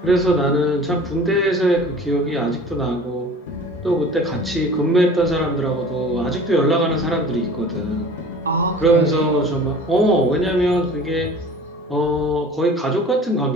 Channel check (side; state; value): both; normal; correlation 0.44